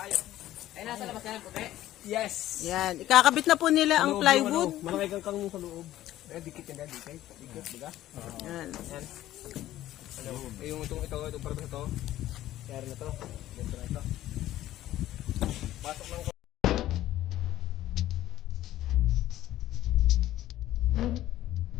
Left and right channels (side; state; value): right; quieter; 14.1 dB